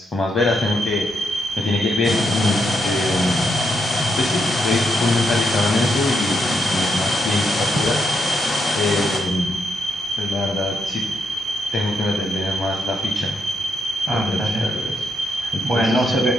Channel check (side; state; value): both; normal; correlation 0.80